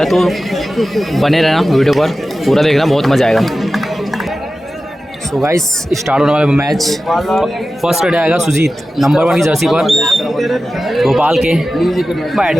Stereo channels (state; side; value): normal; both; correlation 0.94